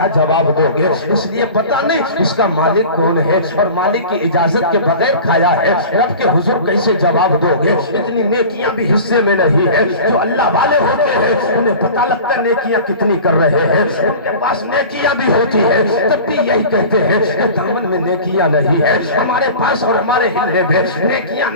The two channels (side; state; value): both; inverted; correlation -0.37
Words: جواب دو گے؟ اس لیے پتہ نہیں اس کا مالک کون ہے، اور مالک کی اجازت کے بغیر کھایا ہے، رب کے حضور کیسے جواب دو گے؟ اتنی نیکیاں بھی حصے میں نہیں ہے. جو اللہ والے ہوتے ہیں انہیں پتہ لگتا ہے نیکیاں کتنی کر رہے ہیں، ان کے پاس نیکیاں بھی ہوتی ہے تب بھی یہی کہتے ہیں کہ دامن میں نیکیاں نہیں ہے. ہمارے پاس اور ہمارے ہلنے میں نیکیاں